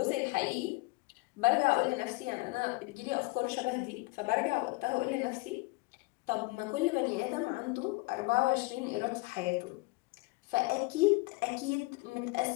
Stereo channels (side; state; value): right; quieter; 24.4 dB